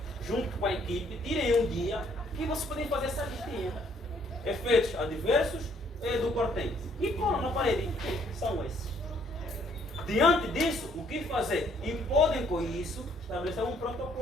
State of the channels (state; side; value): normal; both; correlation 0.65